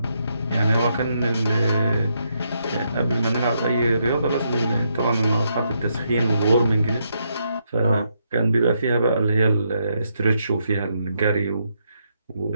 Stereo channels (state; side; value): inverted; both; correlation -0.78